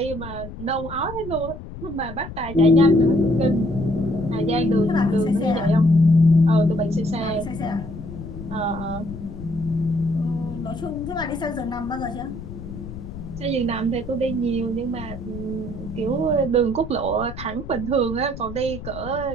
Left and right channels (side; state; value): left; noise; rumble, 11 dB below the sound